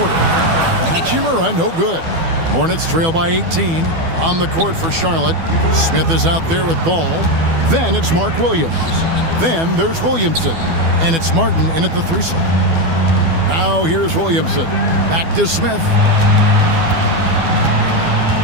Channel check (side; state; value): left; late; 12 ms